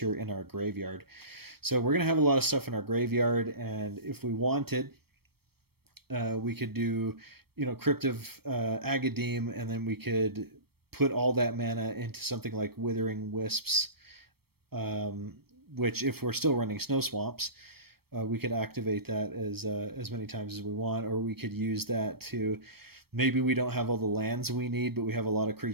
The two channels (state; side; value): late; left; 0.96 ms